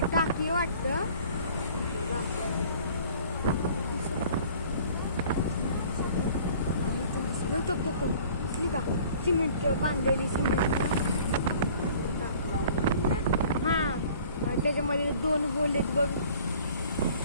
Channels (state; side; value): inverted; both; correlation -0.51